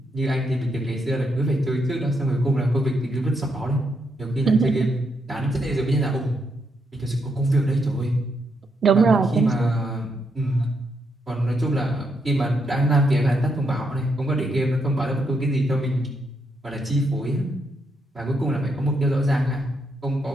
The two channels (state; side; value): normal; both; correlation 0.79